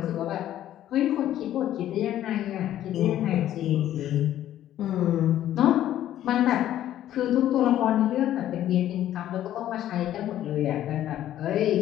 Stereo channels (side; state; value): right; quieter; 12.2 dB